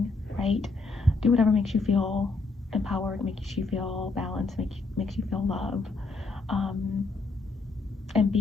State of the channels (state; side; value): quieter; right; 3.7 dB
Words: write, do whatever makes you feel empowered, makes you feel balanced, makes you feel love, and